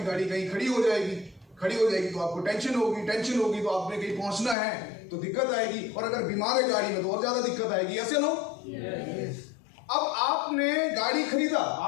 गाड़ी कहीं खड़ी हो जाएगी, खड़ी हो जाएगी तो आपको टेंशन होगी, टेंशन होगी तो आपने कहीं पहुंचना है तो दिक्कत आएगी, और अगर बीमार है गाड़ी में तो और ज्यादा दिक्कत आएगी, ऐसे लो। अब आपने गाड़ी खरीदा,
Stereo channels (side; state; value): right; drops out; at 4.5 s